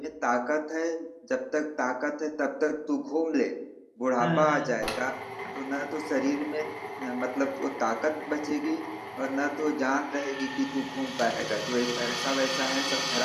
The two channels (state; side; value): identical; both; correlation 1.00